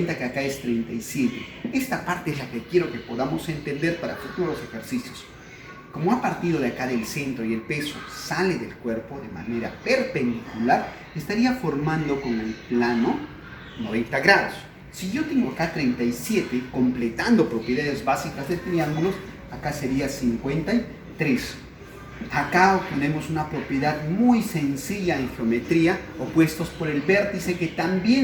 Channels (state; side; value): identical; both; correlation 1.00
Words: que acá es 37. Esta parte es la que quiero que podamos entender para futuros ejercicios. Como ha partido de acá del centro y el peso sale del cuerpo de manera perpendicular, estaría formando con el plano 90 grados. Si yo tengo acá 37, completando propiedades básicas de triángulos, acá sería 53. Acá obtenemos una propiedad muy sencilla en geometría, opuestos por el vértice, que